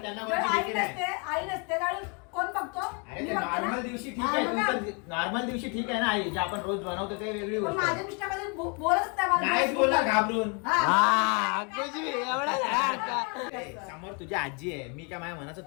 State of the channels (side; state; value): right; quieter; 34.7 dB